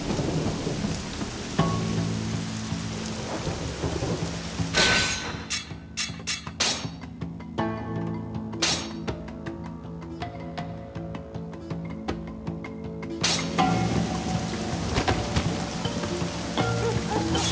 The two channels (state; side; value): identical; both; correlation 1.00